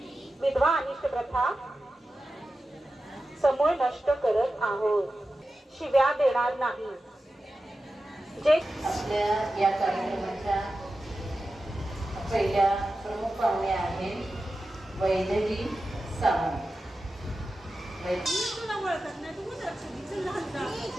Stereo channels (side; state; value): both; normal; correlation 0.93